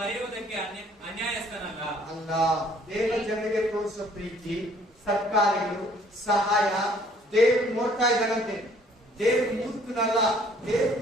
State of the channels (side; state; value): both; normal; correlation 0.59